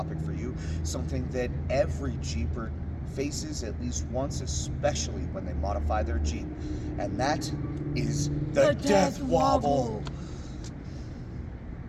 for you. Something that every Jeeper faces at least once, especially when they modify their Jeep. And that is the Death Wobble.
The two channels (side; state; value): both; identical; correlation 1.00